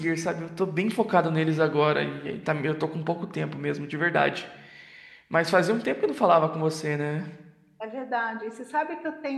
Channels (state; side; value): identical; both; correlation 1.00